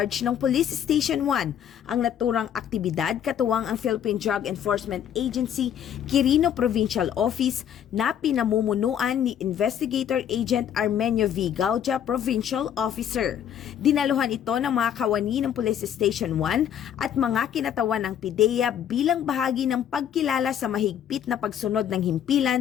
ng Police Station 1, ang naturang aktibidad katuwang ang Philippine Drug Enforcement Agency Quirino Provincial Office na pinamumunuan ni Investigator Agent Armenio V. Gaudia, Provincial Officer. Dinaluhan ito ng mga kawani ng Police Station 1 at mga kinatawan ng PIDEA bilang bahagi ng pagkilala sa mahigpit na pagsunod ng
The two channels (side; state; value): right; quieter; 9.5 dB